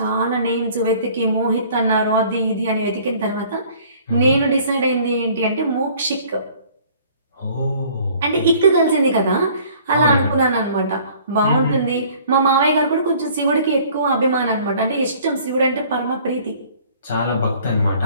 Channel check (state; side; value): inverted; both; correlation -0.54